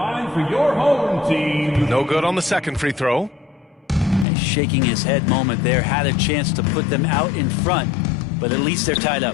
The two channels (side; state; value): right; drops out; at 4.2 s